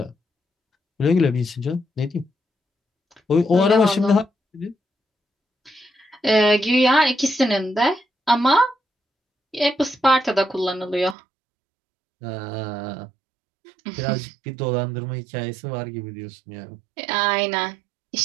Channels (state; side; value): drops out; left; at 11.2 s